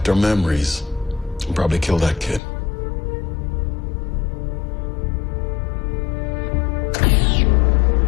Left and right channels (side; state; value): right; drops out; at 2.4 s